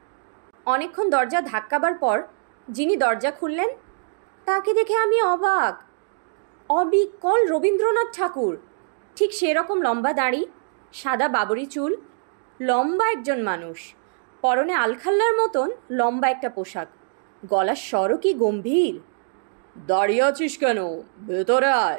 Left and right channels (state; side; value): silent; left; digital silence